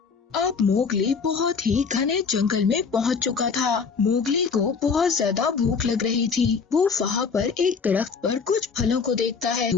अब मोगली बहुत ही घने जंगल में पहुंच चुका था। मोगली को बहुत ज्यादा भूख लग रही थी। वो वहाँ पर एक दरख्त पर कुछ फलों को देखता है।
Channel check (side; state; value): right; quieter; 5.4 dB